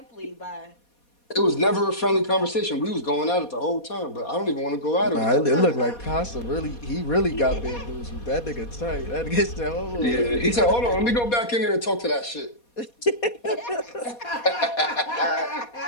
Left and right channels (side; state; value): right; late; 4.2 ms